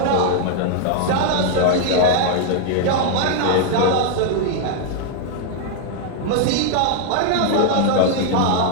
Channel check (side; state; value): both; different; correlation 0.00